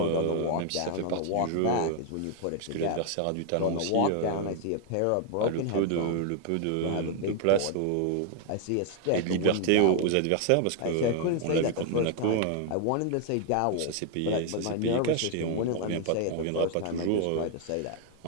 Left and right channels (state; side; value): different; both; correlation 0.00